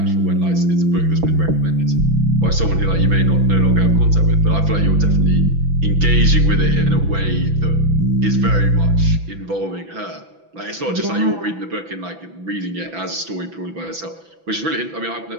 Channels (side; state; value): left; late; 6.0 ms